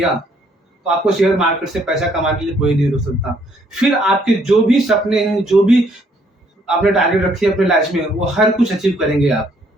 तो आपको शेयर मार्केट से पैसा कमाने के लिए कोई नहीं रोक सकता। फिर आपके जो भी सपने हैं, जो भी आपने टारगेट रखी है अपने लाइफ में, वो हर कुछ अचीव करेंगे आप।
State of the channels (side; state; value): both; normal; correlation 0.67